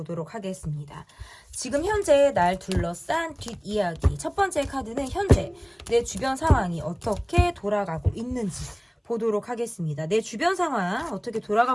하겠습니다. 지금 현재 날 둘러싼 뒷이야기 첫 번째 카드는 현재 내 주변 상황이 어떻게 돌아가고 있는지 보도록 하겠습니다. 내 주변 상황 어떻게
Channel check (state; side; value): identical; both; correlation 1.00